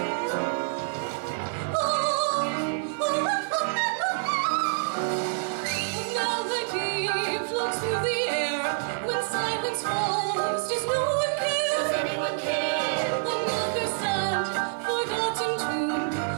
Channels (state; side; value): silent; left; digital silence